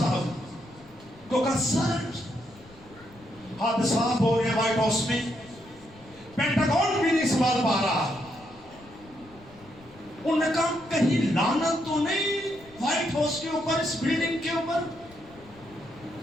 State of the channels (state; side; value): noise; left; rumble, 24 dB below the sound